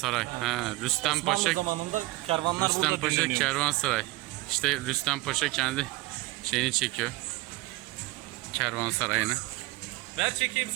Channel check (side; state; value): left; quieter; 20.8 dB